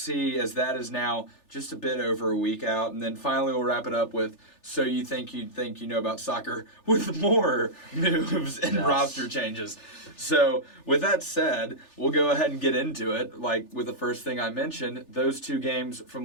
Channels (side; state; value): right; late; 3.4 ms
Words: as that is now just a bit over a week out. And then finally we'll wrap it up with So You Think You Know About Soccer with more moves and roster changes. So with that said, we'll go ahead and get into it. Like with the first thing I mentioned, those two games